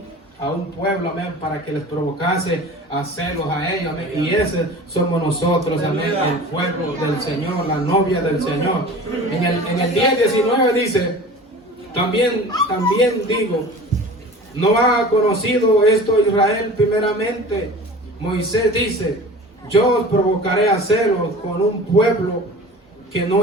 a un pueblo, amén, para que les provocase a hacerlos a ellos, amén. Y ese somos nosotros, amén, el pueblo del Señor, la novia del Señor. En el 10:19 dice, también digo, ¿no ha conocido esto Israel primeramente? Moisés dice, yo os provocaré a hacerlo con un pueblo que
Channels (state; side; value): normal; both; correlation 0.39